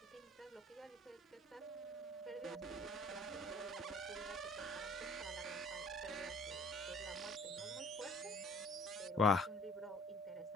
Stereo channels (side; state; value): both; normal; correlation 0.53